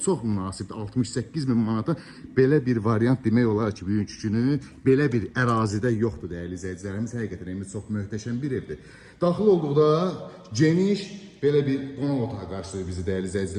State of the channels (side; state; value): both; identical; correlation 1.00